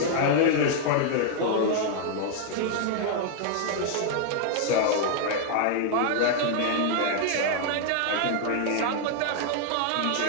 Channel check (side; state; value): both; different; correlation 0.00